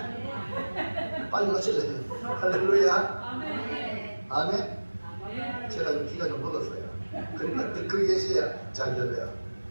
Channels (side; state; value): both; inverted; correlation -1.00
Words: 빨리 마실래요. 할렐루야. 아멘. 아멘. 제가 좀 기가 좀 먹었어요. 그러니까 듣고 계셔야 잘 들려요.